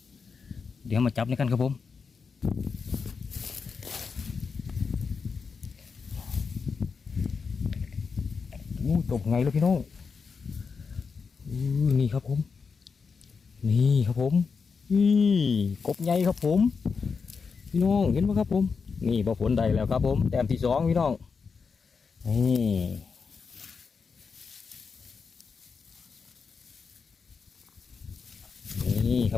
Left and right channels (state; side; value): quieter; right; 5.3 dB